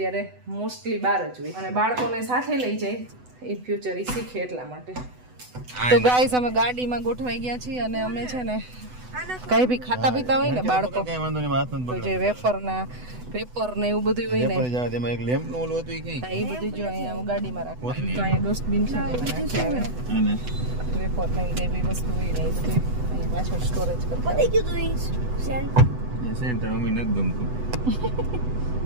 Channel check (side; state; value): left; late; 8.0 ms